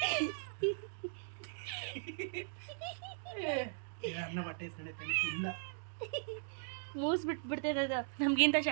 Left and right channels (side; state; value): left; silent; digital silence